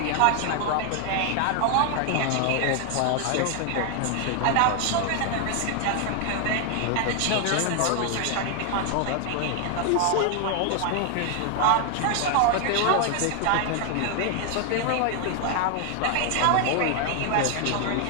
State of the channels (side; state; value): both; different; correlation 0.00